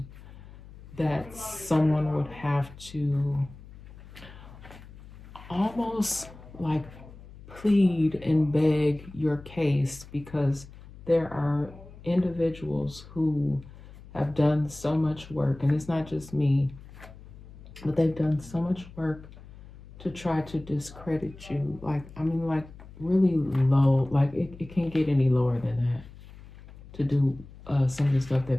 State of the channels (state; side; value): noise; left; hum, 18 dB below the sound